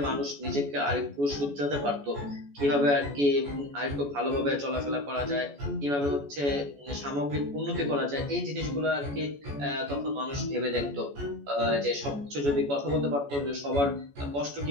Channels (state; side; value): late; left; 14 ms